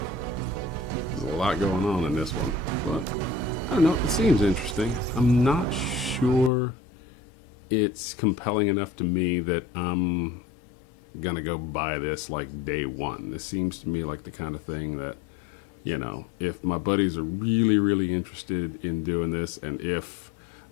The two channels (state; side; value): drops out; right; at 6.5 s